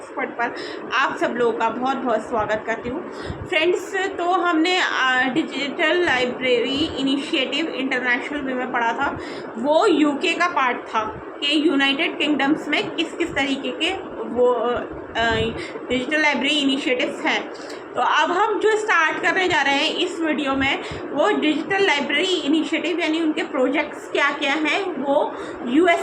पर आप सब लोगों का बहुत बहुत स्वागत करती हूँ। फ्रेंड्स, तो हमने डिजिटल लाइब्रेरी इनिशिएटिव इंटरनेशनल में पढ़ा था। वो यूके का पार्ट था कि यूनाइटेड किंगडम्स में किस किस तरीके के वो डिजिटल लाइब्रेरी इनिशिएटिव्स हैं। तो अब हम जो स्टार्ट करने जा रहे हैं इस वीडियो में, वो डिजिटल लाइब्रेरी इनिशिएटिव यानी उनके प्रोजेक्ट्स क्या क्या हैं वो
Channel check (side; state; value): both; identical; correlation 1.00